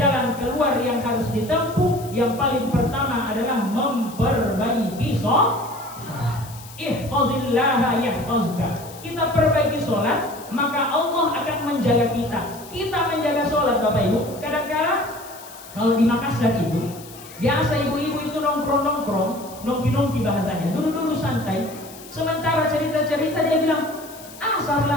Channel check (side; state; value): left; noise; hiss, 18 dB below the sound